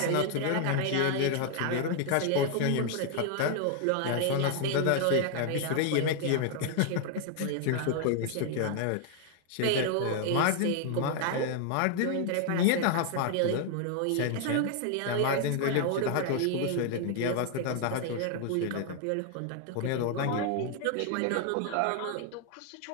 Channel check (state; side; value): different; both; correlation 0.00